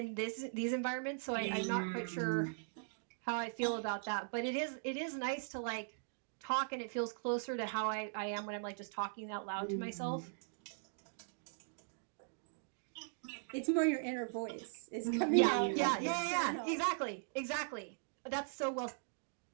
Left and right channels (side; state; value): left; silent; digital silence